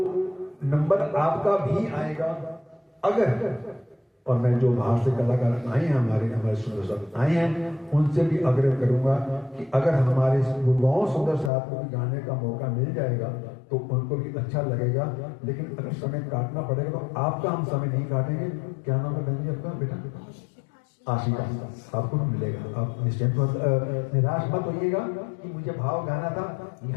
नंबर आपका भी आएगा अगर, और मैं जो बाहर से कलाकार आए हैं हमारे सुंदर साहब आए हैं, उनसे भी आग्रह करूंगा कि अगर हमारे गुरुगांव सुंदर साहब को भी गाने का मौका मिल जाएगा तो उनको भी अच्छा लगेगा। लेकिन अगर समय काटना पड़ेगा तो आपका हम समय नहीं काटेंगे। क्या नाम है बहन जी आपका? बेटा आशिका, आपको मिलेगा, आप निश्चिंत निराश मत होइएगा कि मुझे भाव गाना था।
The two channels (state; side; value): drops out; right; at 11.5 s